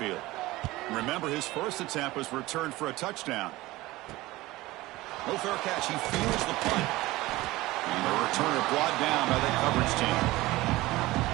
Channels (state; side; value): quieter; left; 18.9 dB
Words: Remember, his first attempt was returned for a touchdown. No fair catch. He feels the punt. And the returner brought down by the coverage team.